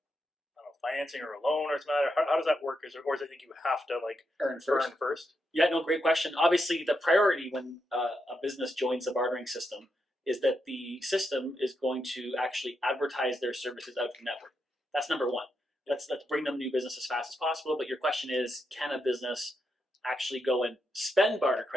I don't know, financing or a loan or something like that? How does that work? Or is it think you have to like Earn first. earn first? Yeah, no, great question. Obviously, the priority when a business joins the bartering system is that the system is going to actually advertise their services out to the network. That's number one. Let's bring them new business as fast as possible. But your question is, can a business actually go and spend barter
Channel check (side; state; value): both; normal; correlation 0.83